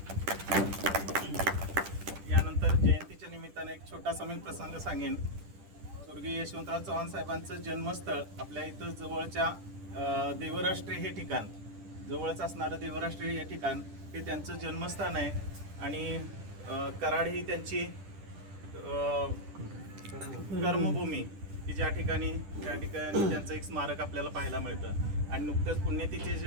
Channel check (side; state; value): left; late; 10 ms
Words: यानंतर जयंतीच्या निमित्ताने एक छोटासा मी प्रसंग सांगेन. स्वर्गीय यशवंतराव चव्हाण साहेबांचं जन्मस्थळ आपल्या इथं जवळच्या देवराष्ट्रे हे ठिकाण, जवळच असणारं देवराष्ट्रे हे ठिकाण हे त्यांचं जन्मस्थान आहे. आणि कराड ही त्यांची कर्मभूमी की त्या ठिकाणी त्यांचं एक स्मारक आपल्याला पाहायला मिळतं. आणि नुकतंच